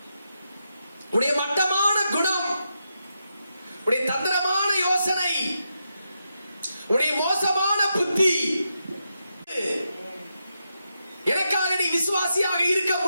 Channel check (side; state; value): both; inverted; correlation -0.84